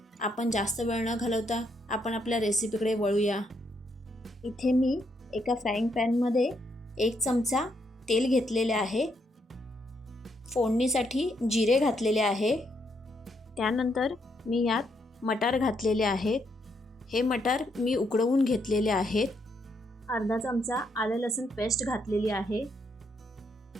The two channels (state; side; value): normal; both; correlation 0.76